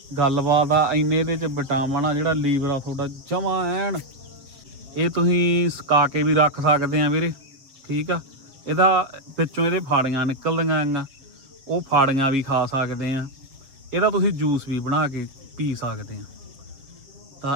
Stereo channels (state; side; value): late; left; 7.6 ms